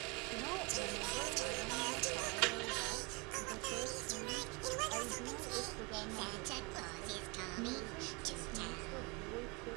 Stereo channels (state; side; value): quieter; left; 28.7 dB